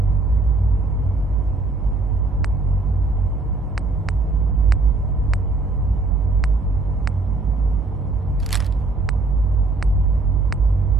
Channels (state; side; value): quieter; left; 3.4 dB